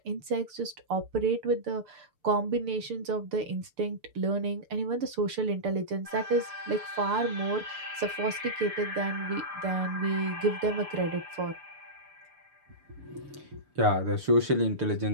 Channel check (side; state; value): left; late; 6.8 ms